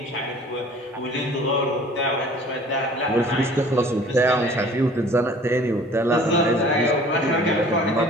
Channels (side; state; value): both; normal; correlation 0.49